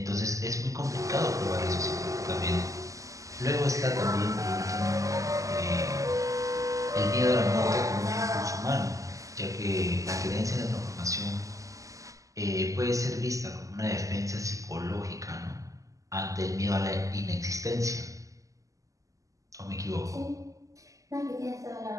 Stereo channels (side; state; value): left; late; 0.16 ms